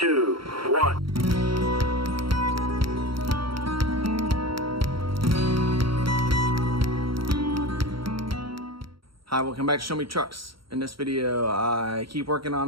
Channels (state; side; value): late; left; 0.74 ms